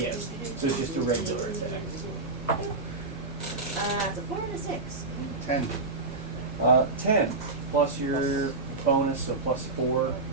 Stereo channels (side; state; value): left; quieter; 3.5 dB